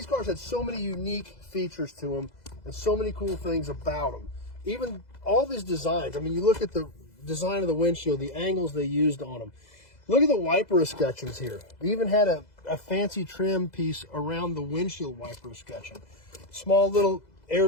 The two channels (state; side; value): late; right; 2.0 ms